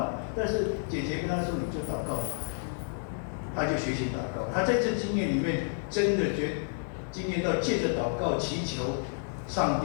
但是姐姐跟他说：“你就祷告吧。”他就学习祷告。他在这经验里面，真的经验到借着祷告祈求，上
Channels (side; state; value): right; silent; digital silence